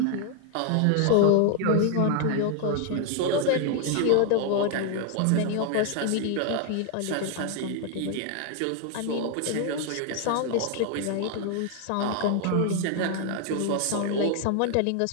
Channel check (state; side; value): different; both; correlation 0.00